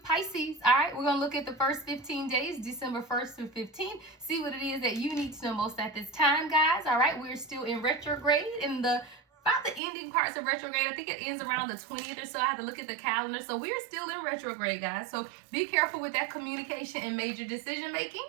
Pisces. All right, we're going to look at the first 15 days, December 1st through 15th. See what it is that you need to know most at this time, guys. All right, we're still in retrograde in about the ending parts of retrograde. I think it ends around the 20th or so. I have to look at the calendar. So we're still in retrograde, guys. So be careful with that communication and major decision making.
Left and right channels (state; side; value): drops out; left; at 9.8 s